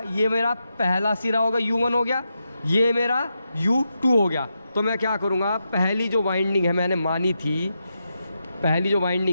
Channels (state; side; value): inverted; both; correlation -0.86